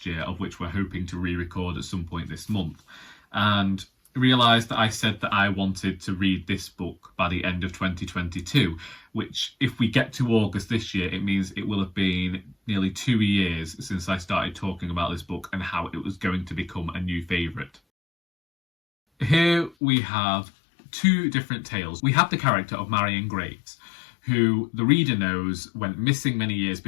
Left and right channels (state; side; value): drops out; right; at 19.8 s